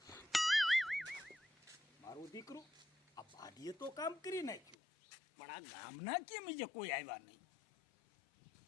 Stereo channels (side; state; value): right; drops out; at 4.8 s